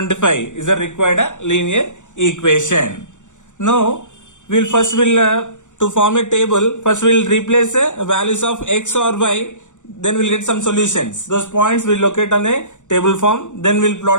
is a required linear equation. Now we'll to form a table, first we'll replace values of x or y, then we'll get some solutions. Those points we'll locate on a table form, then we'll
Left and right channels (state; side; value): late; right; 0.85 ms